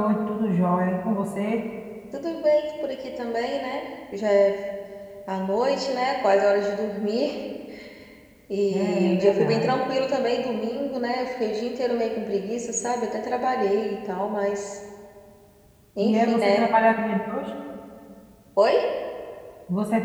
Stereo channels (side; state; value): both; identical; correlation 1.00